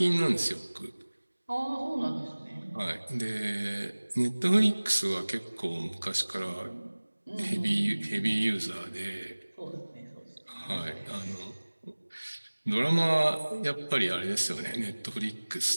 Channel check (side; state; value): both; inverted; correlation -1.00